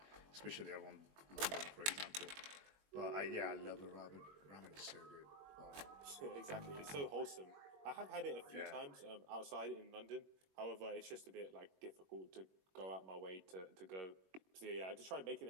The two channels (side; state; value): left; late; 21 ms